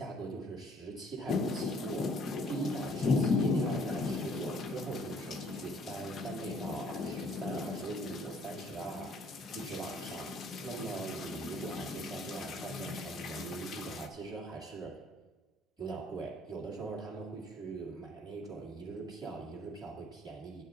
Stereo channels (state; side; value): normal; both; correlation 0.60